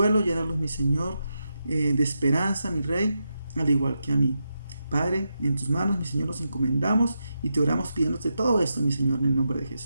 llénalos, mi Señor, de esperanza, mi Rey, al igual que a mí. Padre, en tus manos, mi Señor, nos encomendamos y te oramos pidiéndote todo esto, mi Señor, en el nombre de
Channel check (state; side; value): inverted; both; correlation -0.87